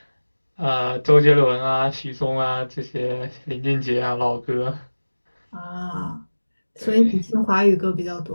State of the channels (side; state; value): both; inverted; correlation -1.00